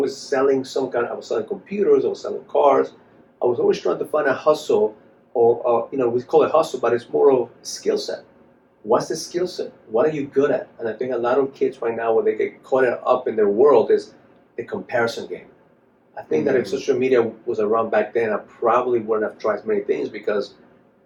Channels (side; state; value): both; identical; correlation 1.00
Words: selling I was selling computers. I was selling cars. I was always trying to find a hustle, or we call it hustle, but it's more of skill set. What's the skill set? What are you good at? And I think a lot of kids right now, where they get caught up in their world, is the comparison game. I think that if social media was around back then, I probably wouldn't have tried many things, because